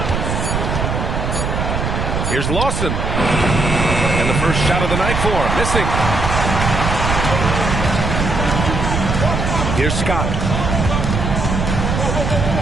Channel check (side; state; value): right; noise; rumble, 1 dB below the sound